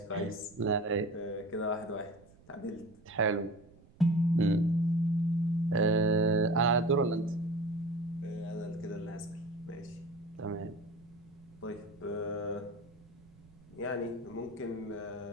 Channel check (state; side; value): noise; right; rumble, 25 dB below the sound